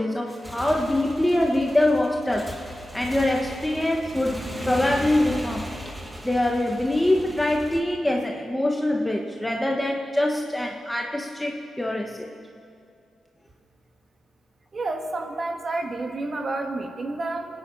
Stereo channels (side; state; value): both; normal; correlation 0.94